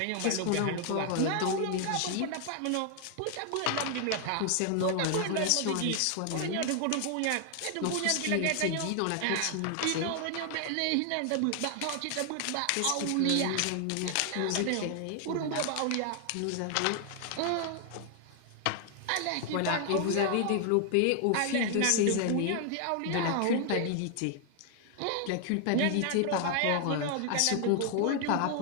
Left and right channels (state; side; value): different; both; correlation 0.00